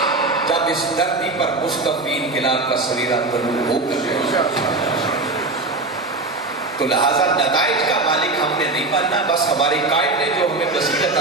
جب اس دھرتی پر مستقبل انقلاب کا سویرا طلوع ہو کر، تو لہذا نتائج کا مالک ہم نے نہیں بننا، بس ہمارے قائد نے جو ہمیں بصیرت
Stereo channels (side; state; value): left; quieter; 3.3 dB